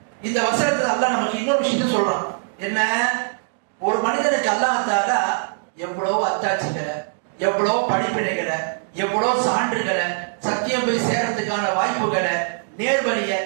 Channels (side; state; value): left; silent; digital silence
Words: இந்த வசனத்துல அல்லாஹ் நமக்கு இன்னொரு விஷயத்தை சொல்றான். என்ன? ஒரு மனிதனுக்கு அல்லாஹ் தஆலா எவ்வளவு அத்தாட்சிகளை, எவ்வளவு படிப்பினைகளை, எவ்வளவு சான்றுகளை, சத்தியம் போய் சேர்றதுக்கான வாய்ப்புகளை, நேர்வழியை